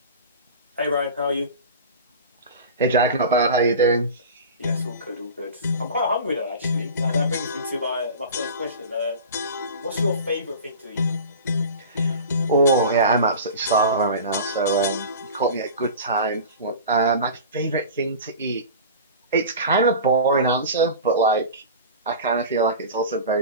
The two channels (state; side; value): inverted; both; correlation -0.34